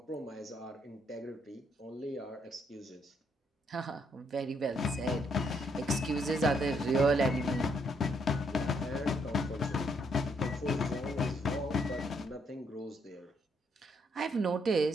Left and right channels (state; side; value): normal; both; correlation 0.72